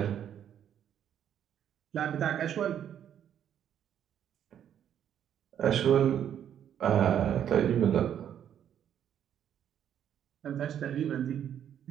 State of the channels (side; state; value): left; quieter; 9.6 dB